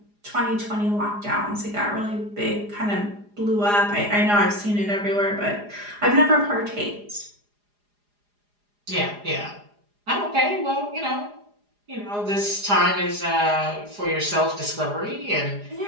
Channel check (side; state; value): left; late; 4.9 ms